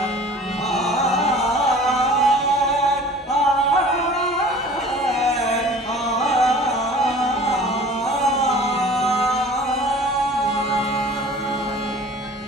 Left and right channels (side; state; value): both; normal; correlation 0.45